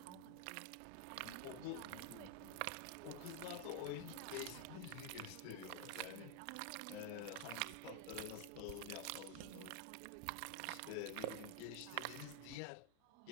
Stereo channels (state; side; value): different; both; correlation 0.01